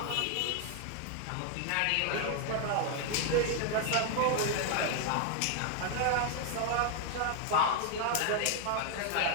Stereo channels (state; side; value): different; both; correlation 0.00